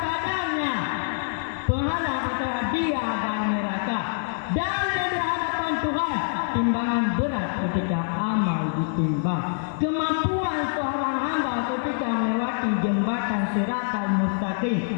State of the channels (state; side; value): silent; right; digital silence